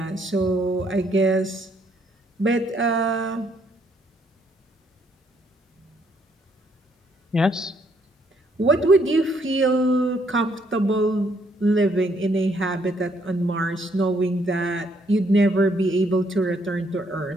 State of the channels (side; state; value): both; normal; correlation 0.70